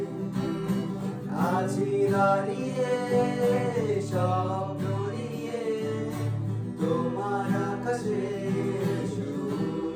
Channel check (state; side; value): identical; both; correlation 1.00